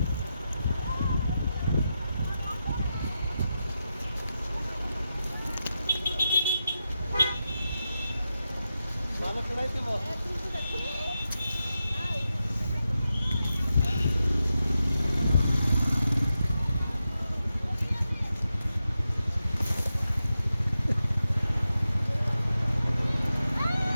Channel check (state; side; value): inverted; both; correlation -0.89